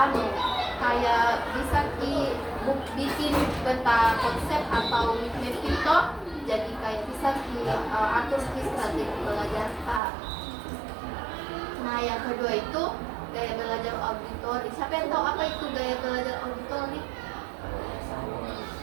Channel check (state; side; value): drops out; left; at 10.0 s